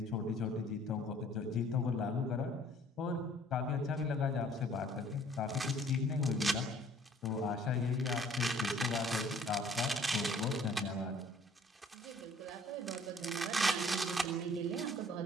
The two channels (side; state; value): both; normal; correlation 0.56